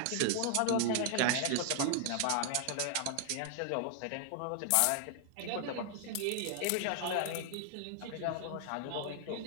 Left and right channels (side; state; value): both; different; correlation 0.00